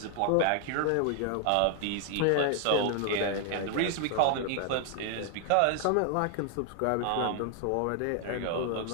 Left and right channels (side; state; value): both; different; correlation 0.00